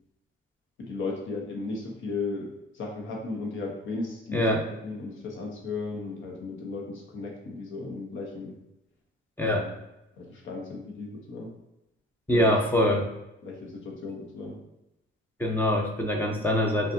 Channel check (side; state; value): both; normal; correlation 0.44